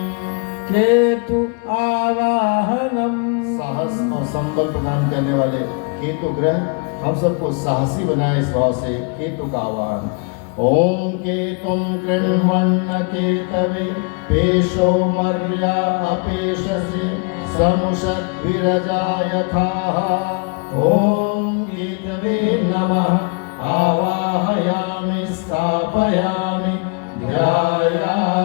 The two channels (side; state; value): right; quieter; 35.5 dB